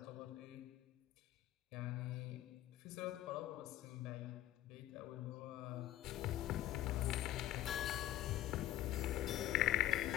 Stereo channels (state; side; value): quieter; right; 13.7 dB